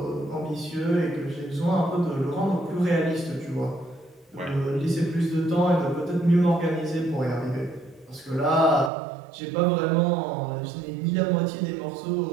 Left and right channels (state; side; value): drops out; left; at 8.9 s